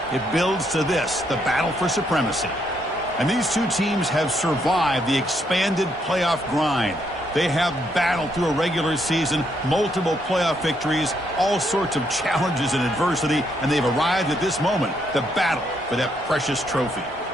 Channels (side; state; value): both; normal; correlation 0.75